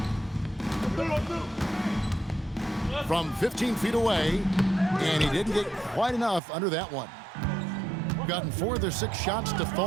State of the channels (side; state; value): left; drops out; at 6.4 s